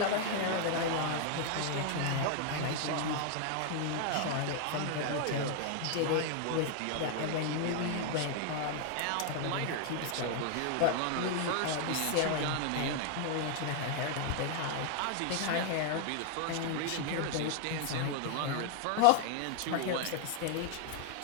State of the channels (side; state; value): both; different; correlation 0.00